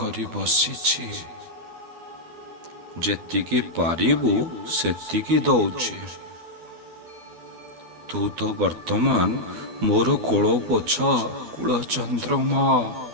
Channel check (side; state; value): left; late; 12 ms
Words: ବସିଛି। ଯେତିକି ପାରିବୁ ସେତିକି ଦଉଛି। ତୁ ତ ବର୍ତ୍ତମାନ ମୋର କୋଳ ପୋଛା କୁଳଚନ୍ଦ୍ରମା।